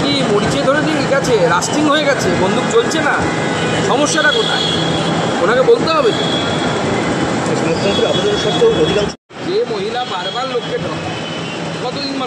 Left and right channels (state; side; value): identical; both; correlation 1.00